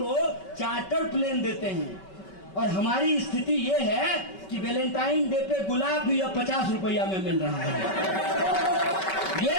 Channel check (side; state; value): right; late; 5.2 ms